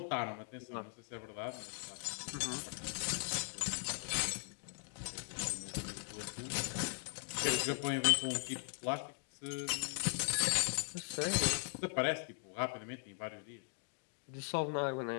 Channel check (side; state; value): right; silent; 51 dB below the other